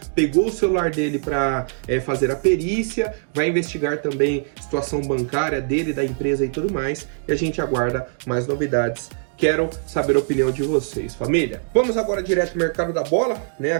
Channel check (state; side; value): silent; left; digital silence